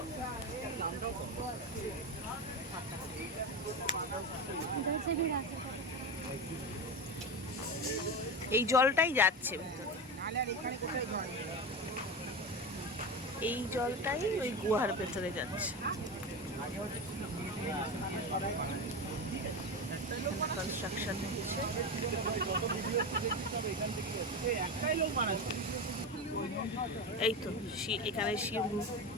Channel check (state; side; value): normal; both; correlation 0.21